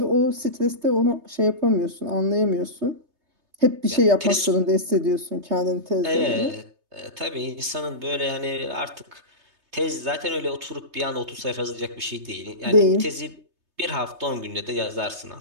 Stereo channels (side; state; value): left; late; 3.3 ms